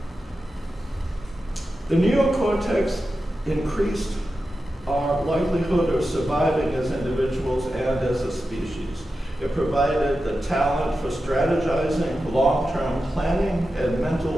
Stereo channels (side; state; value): both; normal; correlation 0.91